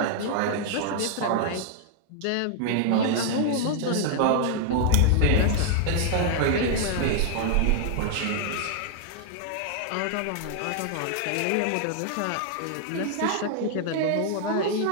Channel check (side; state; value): both; different; correlation 0.00